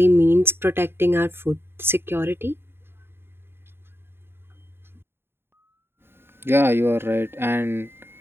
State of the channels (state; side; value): late; left; 0.11 ms